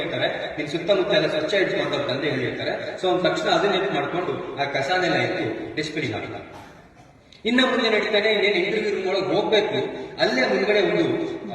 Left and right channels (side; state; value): both; identical; correlation 1.00